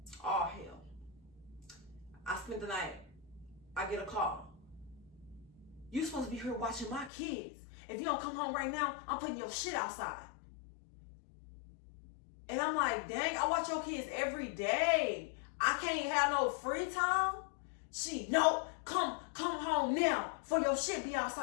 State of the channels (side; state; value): right; drops out; at 7.1 s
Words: All hell. I spent the night. I get a call. You supposed to be here watching my kids. If you don't come home right now, I'm putting your shit outside. And I'm like, dang, I watch your kids every day. I can't have no free time. No, come home now for your shit be